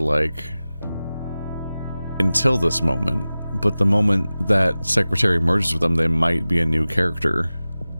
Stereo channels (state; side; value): inverted; both; correlation -0.96